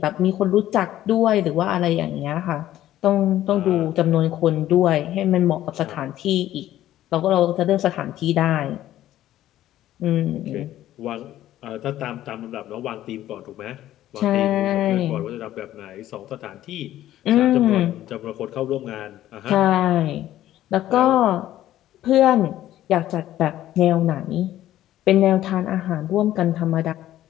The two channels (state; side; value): quieter; right; 13.4 dB